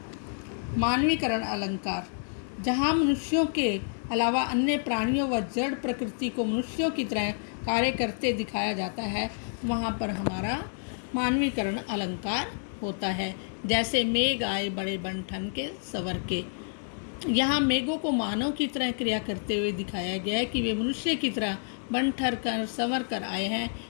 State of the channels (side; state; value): right; silent; digital silence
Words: मानवीकरण अलंकार, जहाँ मनुष्यों के अलावा अन्य प्राणियों व जड़ प्रकृति को मनुष्यों की तरह कार्य करते दिखाया जाता है, वहाँ पर हमारा मानवीकरण अलंकार होता है। जैसे मेघ आए बड़े बनठन के सवर के, यहाँ मेघों को मानव की तरह क्रिया करते हुए दिखाया गया है कि वे मनुष्य की तरह बन ठर कर संवर कर आए हैं,